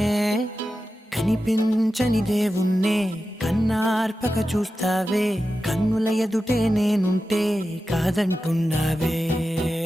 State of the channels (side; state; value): both; normal; correlation 0.92